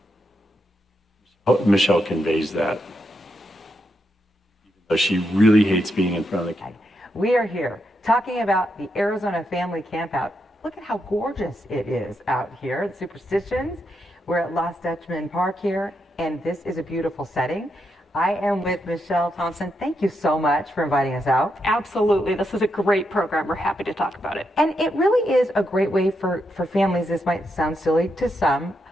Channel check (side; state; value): both; normal; correlation 0.82